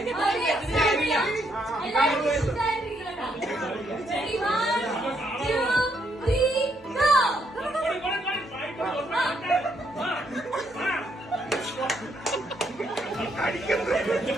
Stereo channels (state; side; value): normal; both; correlation 0.74